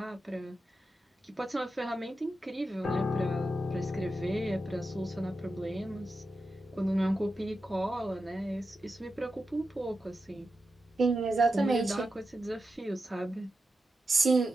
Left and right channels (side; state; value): both; normal; correlation 0.89